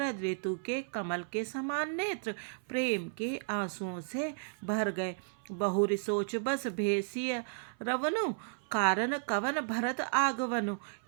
ऋतु के कमल के समान नेत्र प्रेम के आंसुओं से भर गए। बहुरी सोच बस भेसिय रवनु, कारण कवन भरत आगवनु।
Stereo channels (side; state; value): left; silent; 55 dB below the other